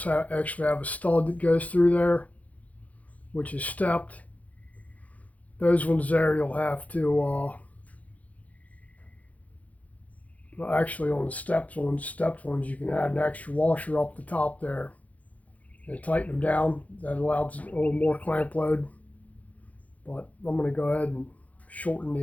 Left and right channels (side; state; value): right; late; 0.071 ms